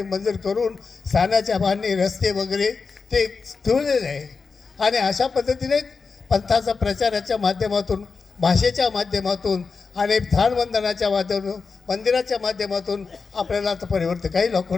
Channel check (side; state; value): right; quieter; 4.8 dB